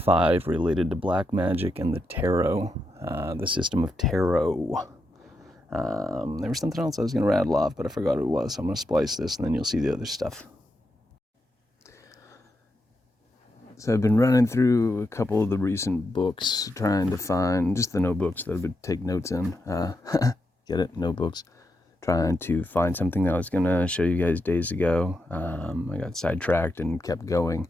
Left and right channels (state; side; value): normal; both; correlation 0.85